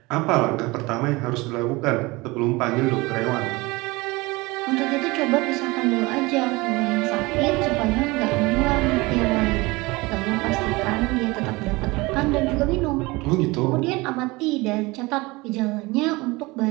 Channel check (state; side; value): quieter; left; 23.1 dB